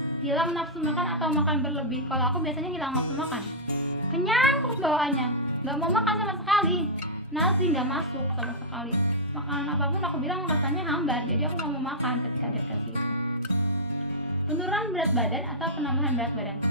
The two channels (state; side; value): normal; both; correlation -0.12